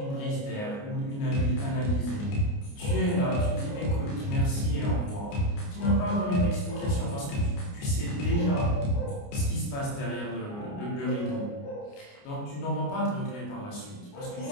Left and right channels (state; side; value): late; right; 29 ms